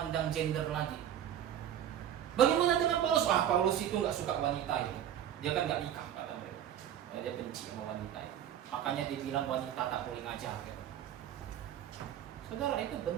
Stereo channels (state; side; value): quieter; left; 10.4 dB